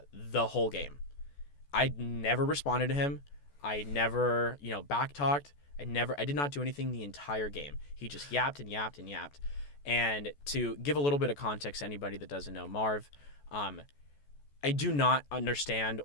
whole game. I never responded to him. I never, backtalked. I did not do anything the entire game. He just yapped and yapped and yapped. And to give a little bit of context to anybody that doesn't know Marv, I do not understand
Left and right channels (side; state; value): right; late; 14 ms